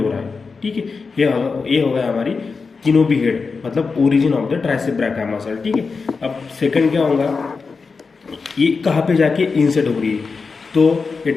रहा है। ठीक है, ये हो गया हमारी तीनों भी हेड, मतलब origin of the tricep brachii muscle. ठीक है। अब सेकंड क्या होगा, ये कहाँ पे जाके इंसर्ट हो रही है, तो ये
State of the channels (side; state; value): right; quieter; 4.7 dB